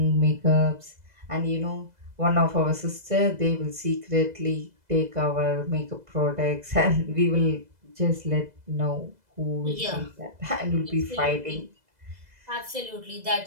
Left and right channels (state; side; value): late; left; 2.0 ms